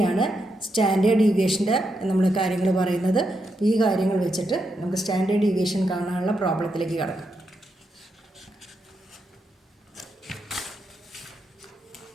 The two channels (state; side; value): normal; both; correlation 0.83